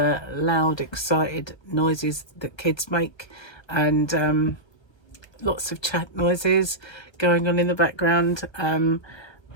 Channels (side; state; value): right; late; 1.3 ms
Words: loud, excited noises that kids make, and lots of chat noises going on in the background.